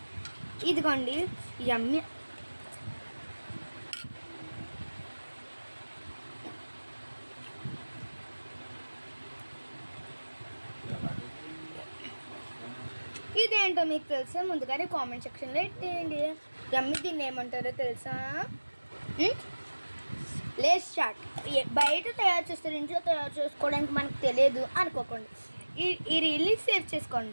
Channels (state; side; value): inverted; both; correlation -1.00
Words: ఇదిగోండి యమ్మి ఇదేంటో మీకు తెలుసా? ముందుగానే కామెంట్ సెక్షన్లో పెట్టేయండి. యమ్మి దీన్ని ఏమంటారో తెలుసా? లేస్ చాట్. బయట తయారు చేస్తారు, ఇంట్లో తయారు చేసుకోవడానికి మనకు తెలియదు అనుకోకండి. ఈ రీల్ని సేవ్